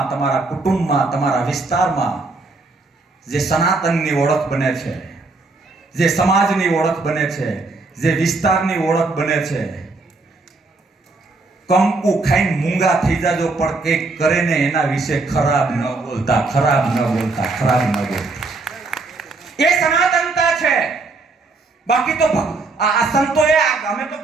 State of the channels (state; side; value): quieter; left; 3.6 dB